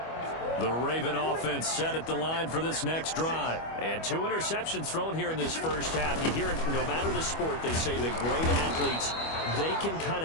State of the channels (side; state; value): right; late; 25 ms